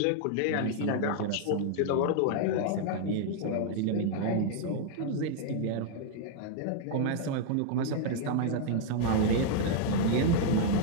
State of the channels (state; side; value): different; both; correlation -0.01